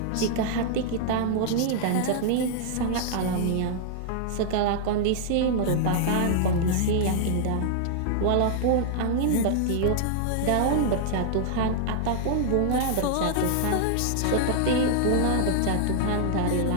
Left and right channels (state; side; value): different; both; correlation -0.01